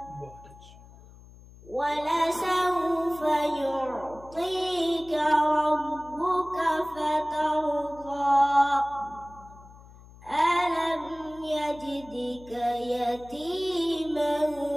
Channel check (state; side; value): noise; left; hum, 21 dB below the sound